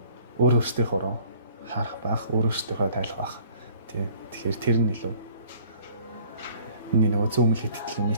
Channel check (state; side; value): inverted; both; correlation -0.54